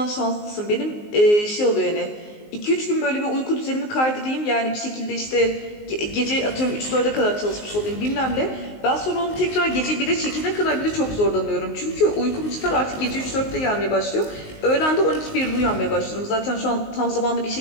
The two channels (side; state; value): right; late; 19 ms